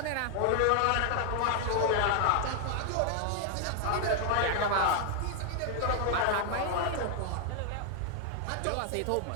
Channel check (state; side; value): different; both; correlation 0.00